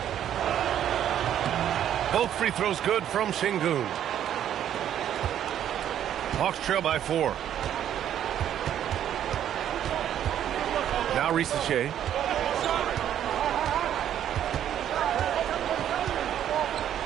Both free throws good from Şengün. Hawks trail by 4. Now Rizachet.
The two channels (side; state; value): left; quieter; 10.4 dB